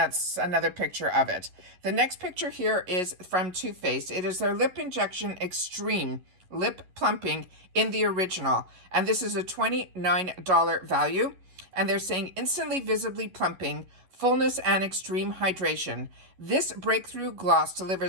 another picture of it. The next picture here is from Too Faced. It is their Lip Injection Extreme Lip Plumping in the original, and this is a $29 value. And they're saying instantly visibly plumping, fullness, and extreme hydration. This breakthrough gloss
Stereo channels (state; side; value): late; left; 11 ms